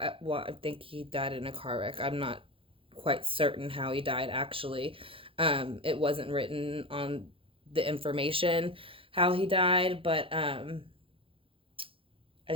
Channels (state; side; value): late; left; 0.26 ms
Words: Well, I think he died in a car wreck. I'm not quite certain how he died, actually. It wasn't written on the information how he died, but I